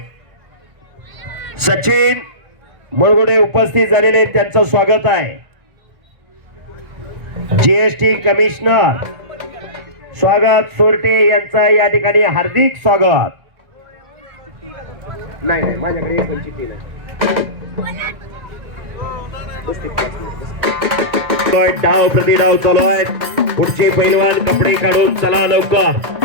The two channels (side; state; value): left; late; 1.6 ms